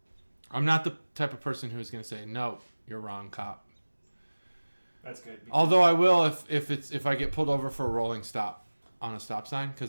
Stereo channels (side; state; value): both; inverted; correlation -1.00